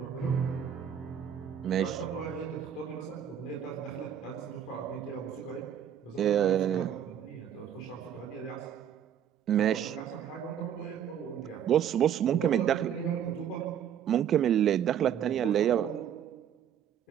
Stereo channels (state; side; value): quieter; left; 9.3 dB